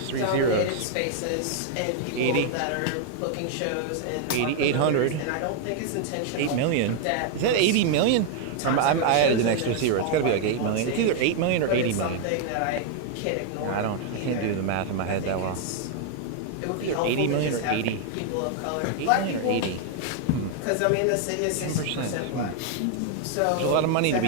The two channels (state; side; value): different; both; correlation 0.00